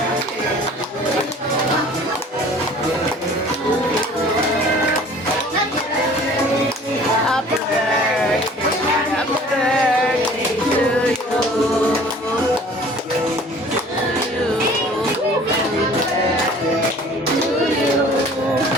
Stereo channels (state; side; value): normal; both; correlation 0.49